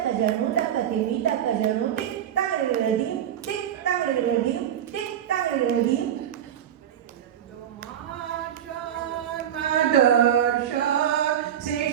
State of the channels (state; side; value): quieter; left; 10.2 dB